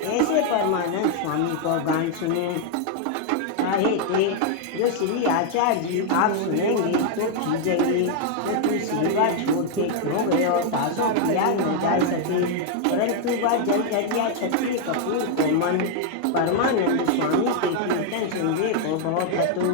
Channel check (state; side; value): different; both; correlation 0.00